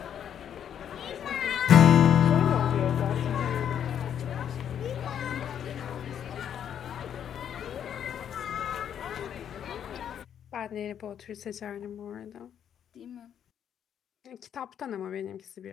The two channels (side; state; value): right; quieter; 9.1 dB